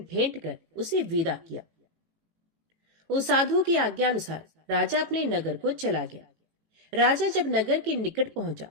भेंट कर उसे विदा किया। उस साधु की आज्ञा अनुसार राजा अपने नगर को चला गया। राजा जब नगर के निकट पहुंचा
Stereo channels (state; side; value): late; left; 18 ms